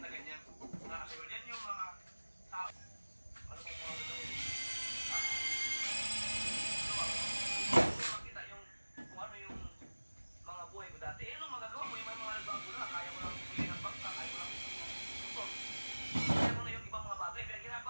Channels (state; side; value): inverted; both; correlation -1.00